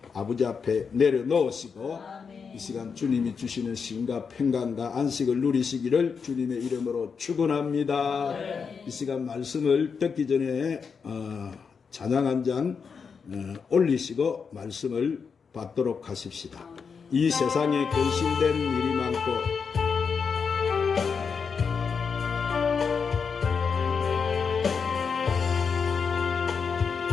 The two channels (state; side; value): quieter; right; 5.9 dB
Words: 아버지 앞에 내려놓으시고 아멘. 이 시간 주님이 주시는 쉼과 평강과 안식을 누리시기를 주님의 이름으로 축원합니다. 네. 이 시간 말씀을 듣기 전에 찬양 한 장 올리시고 말씀을 받도록 하십시다. 이 세상에 근심된 일이 많고